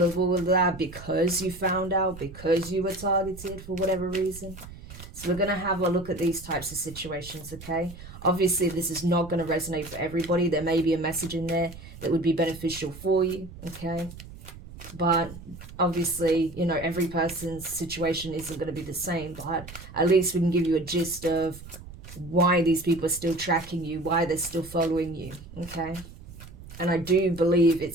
of all of that because you found out, because you were targeted for whatever reason. So we're going to have a look at these types of situations, okay? Obviously, this is not going to resonate for everybody. There may be a message in there that would be beneficial for you, okay? But obviously, every person's situation isn't going to be the same. But at least we can give you a gist of why these people are still tracking you, why they're still following you, okay? And I do believe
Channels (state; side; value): noise; right; rumble, 15 dB below the sound